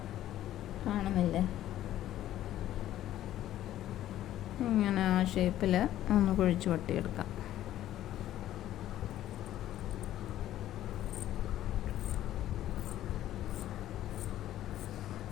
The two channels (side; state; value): right; quieter; 12.9 dB